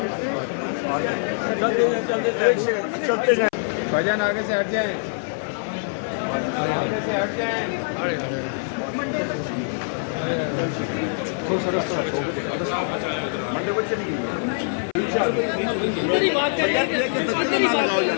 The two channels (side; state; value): right; silent; 56 dB below the other